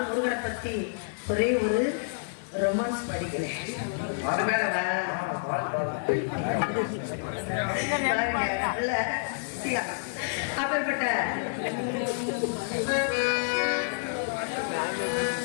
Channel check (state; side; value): silent; right; digital silence